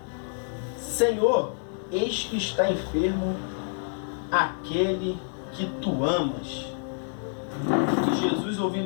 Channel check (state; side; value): silent; right; digital silence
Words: Senhor, eis que está enfermo aquele que tu amas. E Jesus,